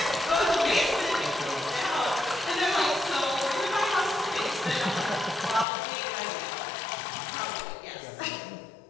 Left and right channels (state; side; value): drops out; right; at 5.7 s